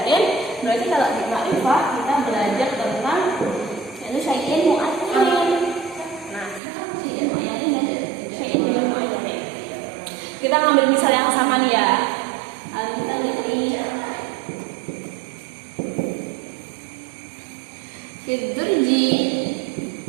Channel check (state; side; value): drops out; left; at 6.6 s